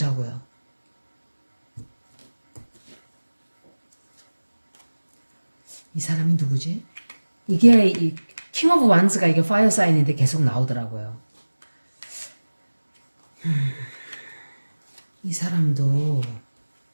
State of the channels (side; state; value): both; inverted; correlation -1.00